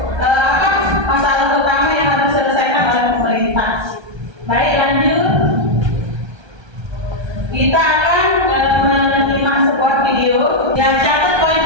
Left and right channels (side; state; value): left; late; 1.3 ms